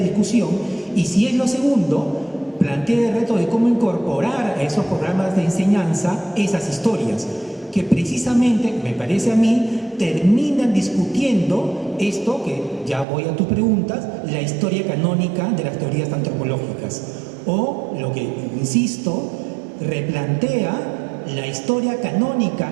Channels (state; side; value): drops out; left; at 13.1 s